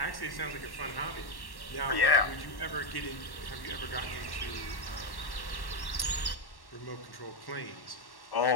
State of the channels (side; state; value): right; late; 1.1 ms